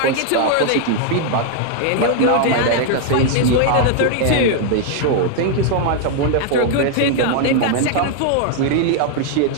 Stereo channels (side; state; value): both; different; correlation 0.00